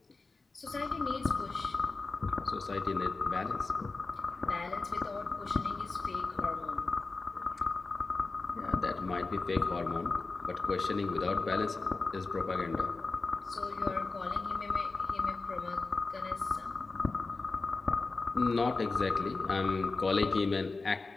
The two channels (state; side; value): quieter; right; 3.8 dB